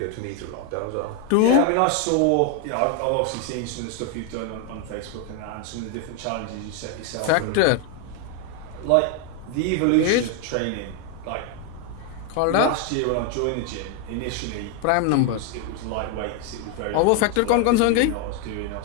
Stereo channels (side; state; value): both; different; correlation 0.01